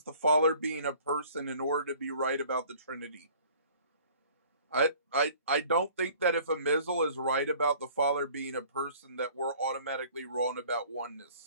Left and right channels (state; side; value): inverted; both; correlation -0.52